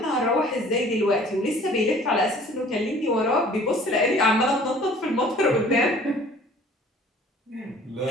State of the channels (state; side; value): normal; both; correlation 0.51